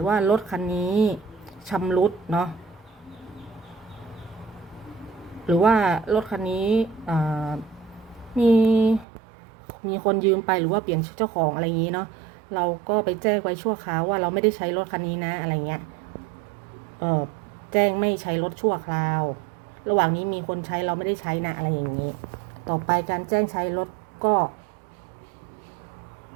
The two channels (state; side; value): drops out; left; at 9.1 s